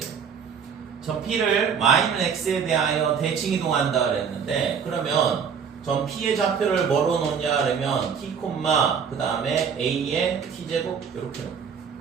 점 p를 y는 x에 대하여 대칭 이동한다 그랬는데, 그러면 점 p의 좌표를 뭐로 놓냐 그러면 t, 그 다음에 a의 t제곱 이렇게 놓고,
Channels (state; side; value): quieter; left; 6.8 dB